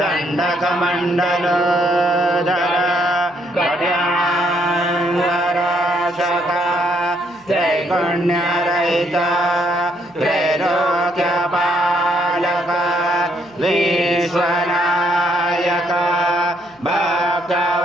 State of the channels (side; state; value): left; noise; hum, 29 dB below the sound